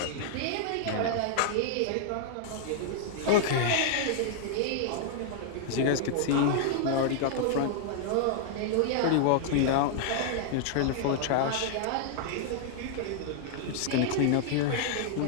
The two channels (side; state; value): both; different; correlation -0.01